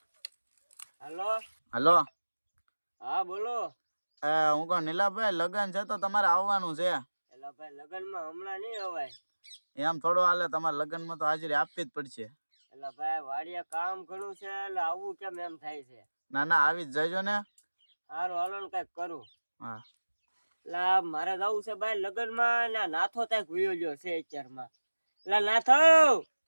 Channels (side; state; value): both; inverted; correlation -1.00